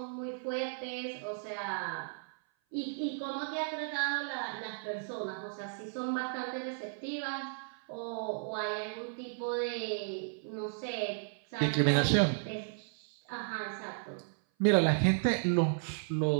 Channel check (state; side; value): silent; left; 55 dB below the other